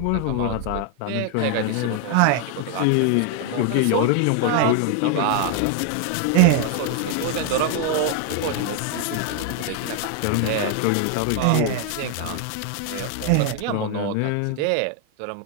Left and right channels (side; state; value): both; different; correlation 0.00